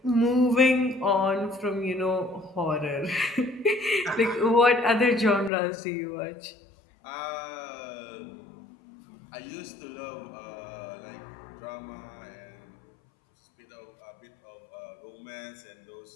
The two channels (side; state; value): right; drops out; at 5.5 s